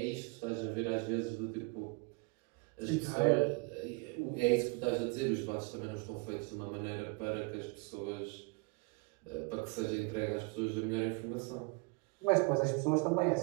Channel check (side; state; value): left; quieter; 29.9 dB